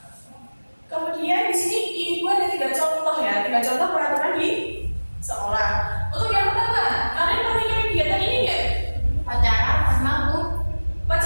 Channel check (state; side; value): inverted; both; correlation -1.00